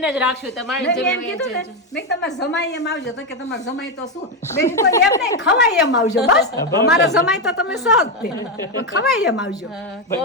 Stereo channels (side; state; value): both; normal; correlation 0.08